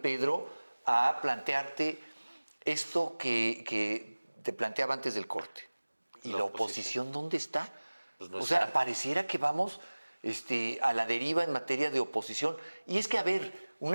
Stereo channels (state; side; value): inverted; both; correlation -1.00